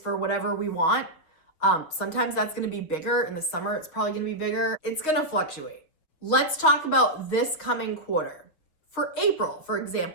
whatever we want. Sometimes that's going to be bigger. In the summer, it's probably going to be bigger. It's going to fluctuate. Let's talk about this coming quarter. For April, for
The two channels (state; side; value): late; right; 6.4 ms